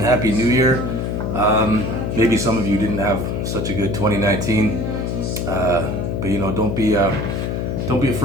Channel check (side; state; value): left; noise; hum, 1 dB below the sound